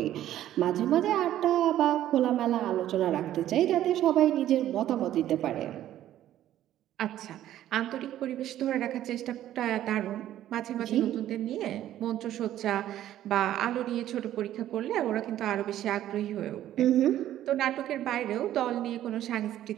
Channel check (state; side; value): quieter; left; 12.5 dB